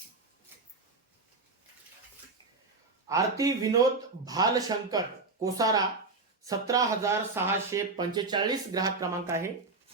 आरती विनोद भालशंकर कोसारा 17,645 ग्राहक क्रमांक आहे.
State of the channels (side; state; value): left; quieter; 3.8 dB